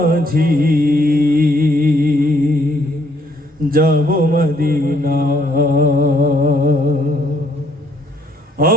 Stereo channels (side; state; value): both; normal; correlation 0.67